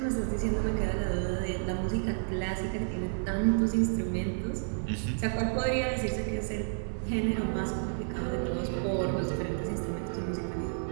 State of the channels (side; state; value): left; silent; digital silence